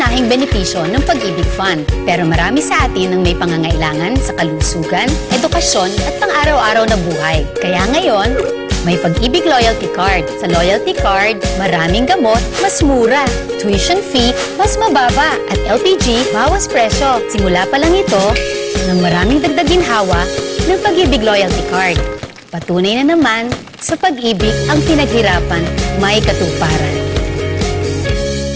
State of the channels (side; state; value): both; identical; correlation 1.00